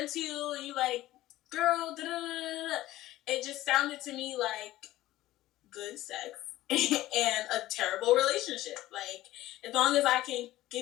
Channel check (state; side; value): quieter; right; 15.8 dB